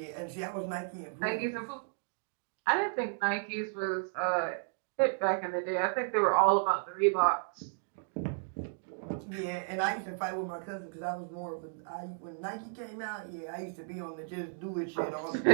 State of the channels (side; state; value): left; silent; digital silence